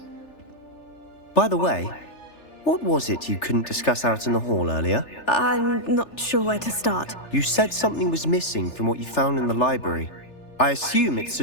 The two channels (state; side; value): late; right; 3.4 ms